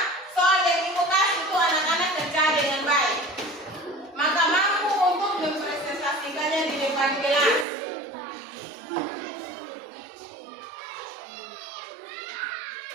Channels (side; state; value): left; drops out; at 7.7 s